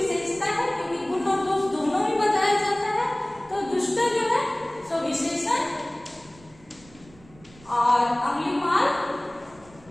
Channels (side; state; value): right; noise; rumble, 25 dB below the sound